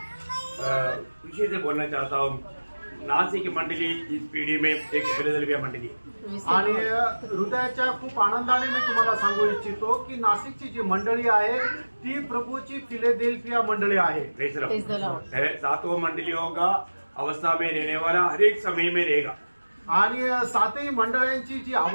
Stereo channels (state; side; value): inverted; both; correlation -1.00